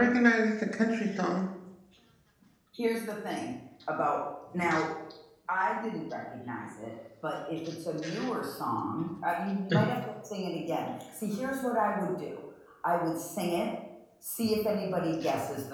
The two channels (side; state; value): both; identical; correlation 1.00